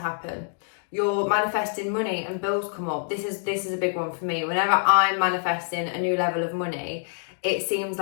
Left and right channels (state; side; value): silent; right; digital silence